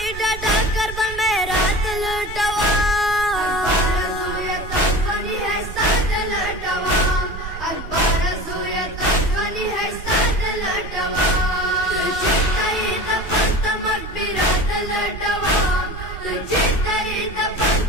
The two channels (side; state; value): right; noise; rumble, 10 dB below the sound